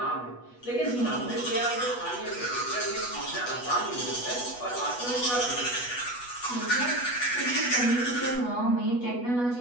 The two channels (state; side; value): late; right; 8.2 ms